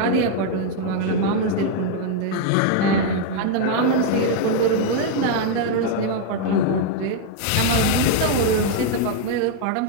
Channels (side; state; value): both; different; correlation 0.00